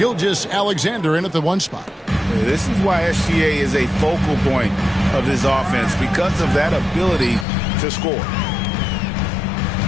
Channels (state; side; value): drops out; right; at 7.5 s